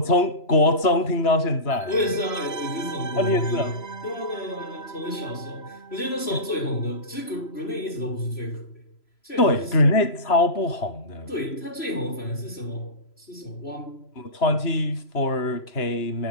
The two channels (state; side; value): late; right; 3.0 ms